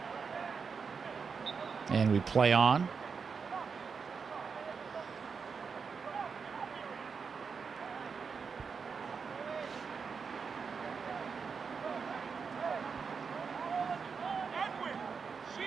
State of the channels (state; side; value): quieter; left; 5.6 dB